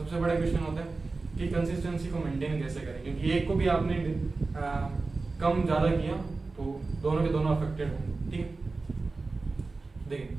बड़ा क्वेश्चन होता है कि कंसिस्टेंसी को मेंटेन कैसे करें, क्योंकि एक को भी आपने कम ज़्यादा किया तो दोनों के दोनों अफेक्टेड होंगे, ठीक है।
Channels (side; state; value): left; quieter; 3.7 dB